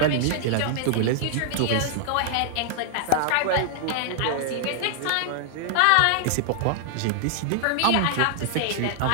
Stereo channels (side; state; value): both; different; correlation -0.01